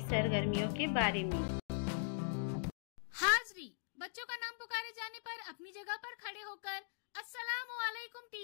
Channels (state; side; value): silent; right; digital silence